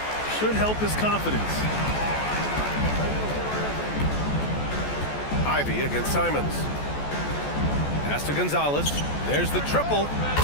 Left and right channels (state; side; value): late; right; 14 ms